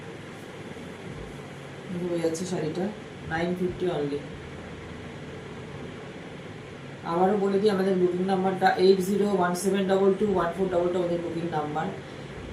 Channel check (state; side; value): identical; both; correlation 1.00